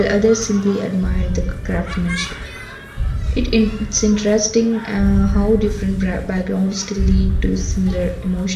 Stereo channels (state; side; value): identical; both; correlation 1.00